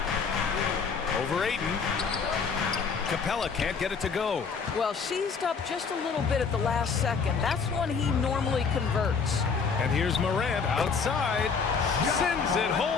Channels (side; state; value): right; quieter; 5.5 dB